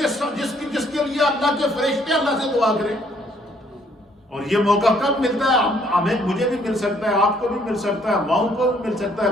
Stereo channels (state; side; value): normal; both; correlation 0.65